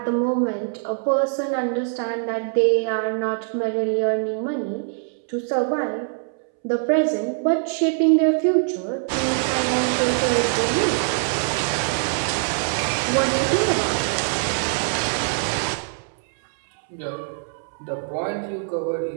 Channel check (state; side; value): silent; left; 63 dB below the other